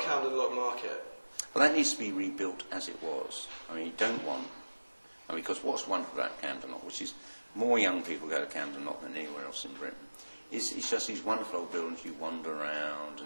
Camden Lock Market? Well, that needs to be rebuilt as it was. You don't want... because what's wonderful about Camden Lock, which is more young people go to Camden Lock than anywhere else in Britain, it's just these wonderful old buildings you wander around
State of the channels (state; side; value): inverted; both; correlation -1.00